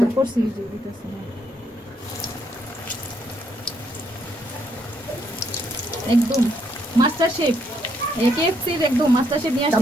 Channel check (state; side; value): normal; both; correlation 0.73